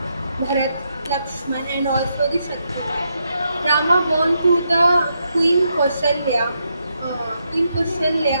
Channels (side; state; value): both; inverted; correlation -0.81